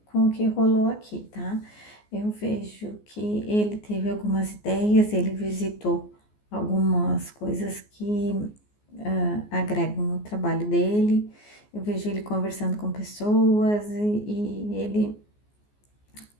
rolou aqui, tá? Eu vejo que ele teve algumas ideias, ele visitou algumas coisas que agregam no trabalho dele. Eu vejo ele conversando com pessoas e ele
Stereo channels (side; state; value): right; late; 14 ms